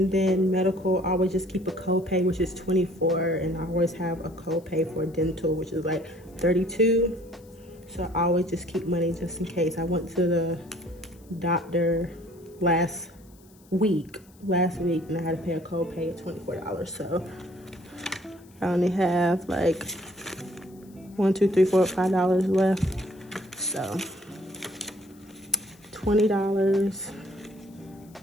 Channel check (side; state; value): left; noise; hiss, 29 dB below the sound